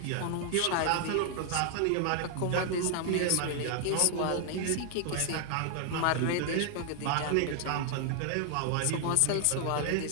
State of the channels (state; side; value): different; both; correlation 0.00